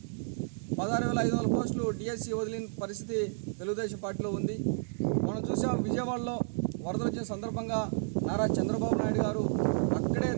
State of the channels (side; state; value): left; silent; digital silence